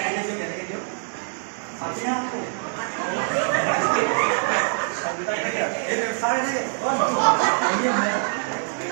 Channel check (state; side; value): silent; left; 57 dB below the other